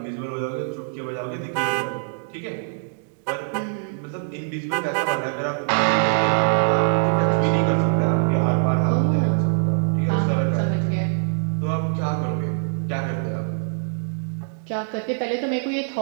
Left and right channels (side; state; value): left; silent; digital silence